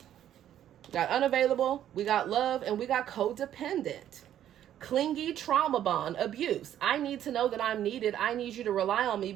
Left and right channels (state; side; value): quieter; left; 11.1 dB